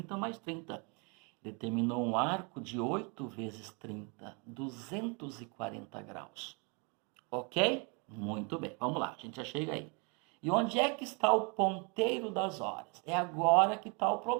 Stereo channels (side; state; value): left; quieter; 33.1 dB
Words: mais 30. Determinou um arco de 8 vezes 30, 240 graus. Ok? Muito bem, vamos lá, a gente já chega aí. E onde é que está o ponteiro das horas? É agora que está o